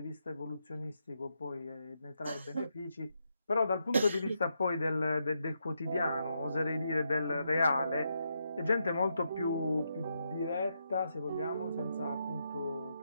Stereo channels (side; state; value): both; inverted; correlation -0.81